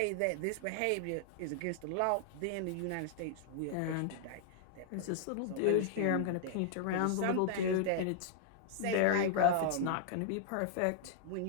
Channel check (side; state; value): both; different; correlation -0.01